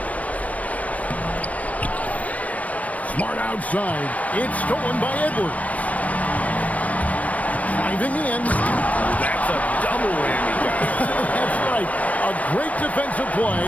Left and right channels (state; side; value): late; right; 0.068 ms